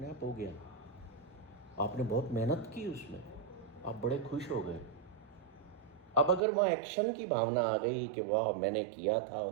आप हो गया, आपने बहुत मेहनत की उसमें, आप बड़े खुश हो गए। अब अगर वहाँ एक्शन की भावना आ गई कि वाह मैंने किया था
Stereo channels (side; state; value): left; drops out; at 6.4 s